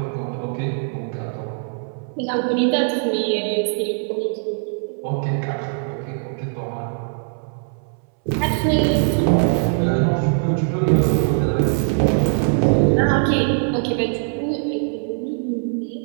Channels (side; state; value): left; silent; 63 dB below the other